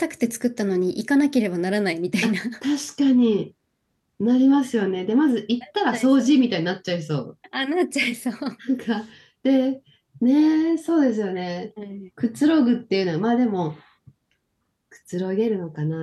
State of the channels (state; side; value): identical; both; correlation 1.00